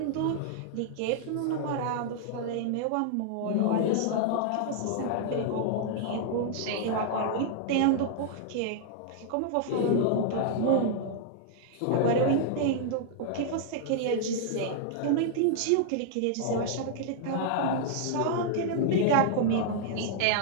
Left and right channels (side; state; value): both; different; correlation -0.01